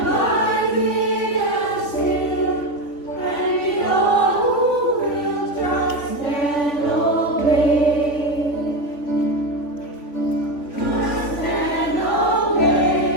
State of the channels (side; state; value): right; late; 3.5 ms